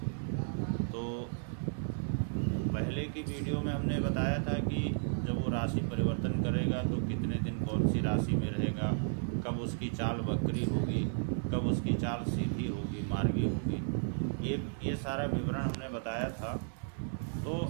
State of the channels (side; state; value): left; silent; 55 dB below the other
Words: तो पहले की वीडियो में हमने बताया था कि जब वो राशि परिवर्तन करेगा तो कितने दिन कौन सी राशि में रहेगा, कब उसकी चाल वक्री होगी, कब उसकी चाल सीधी होगी, मार्गी होगी, ये सारा विवरण हमने बताया था। तो